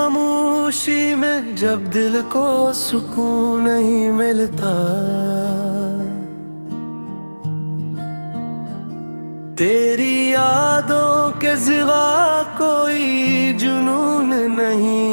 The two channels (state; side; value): inverted; both; correlation -1.00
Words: में जब दिल को सुकून नहीं मिलता, तेरी यादों के सिवा कोई जुनून